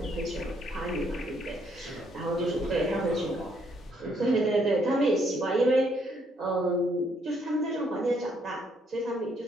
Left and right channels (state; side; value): normal; both; correlation 0.70